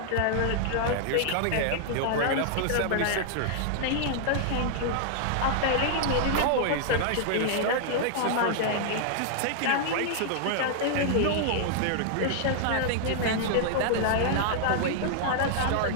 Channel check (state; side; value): different; both; correlation -0.01